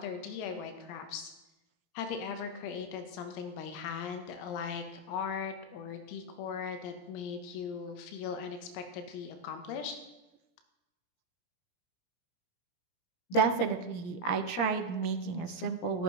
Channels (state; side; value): late; right; 17 ms